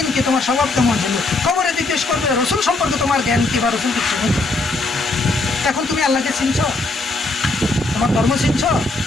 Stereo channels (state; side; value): quieter; right; 3.2 dB